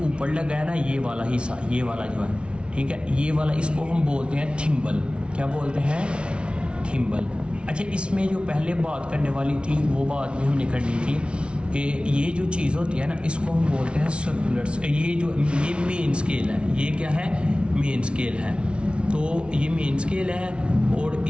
ऊपर लगा है ना ये वाला हिस्सा, ये वाला जो है, ठीक है, ये वाला इसको हम बोलते हैं थिम्बल। क्या बोलते हैं? थिम्बल। अच्छा, इसमें जो पहले बात करने वाली थी वो बात भी हमने करनी थी कि ये जो चीज़ होती है ना इसको हम बोलते हैं सर्कुलर। ये मेन स्केल है। ये क्या है? मेन स्केल है। तो ये मेन स्केल है और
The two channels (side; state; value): left; late; 0.058 ms